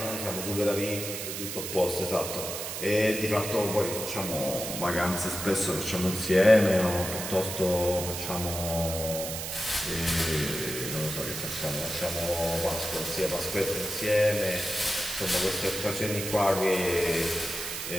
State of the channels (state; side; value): noise; right; hiss, 5 dB below the sound